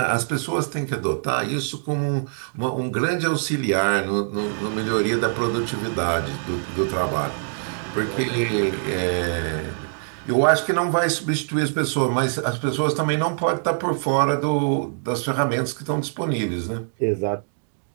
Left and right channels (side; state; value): left; silent; digital silence